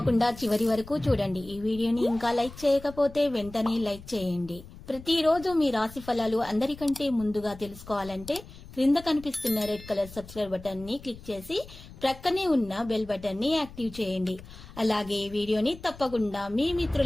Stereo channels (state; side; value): noise; left; rumble, 17 dB below the sound